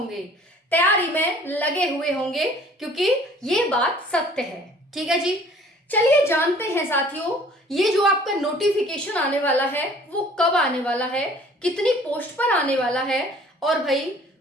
तैयारी में लगे हुए होंगे, क्योंकि ये बात सत्य है। ठीक है जी, चलिए जानते हैं साथियों, ये जो आपका नोटिफिकेशन आने वाला है वो कब आने वाला है, कितनी पोस्ट पर आने वाला है। और भाई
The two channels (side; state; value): both; normal; correlation 0.53